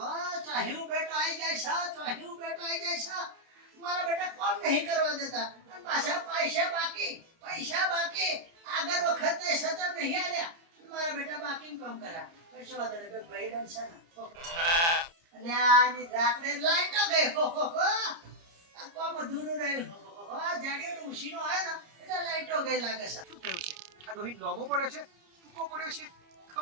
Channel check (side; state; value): left; late; 30 ms